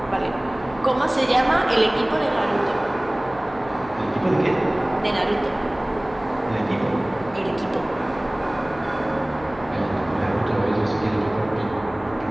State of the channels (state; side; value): noise; left; hum, 19 dB below the sound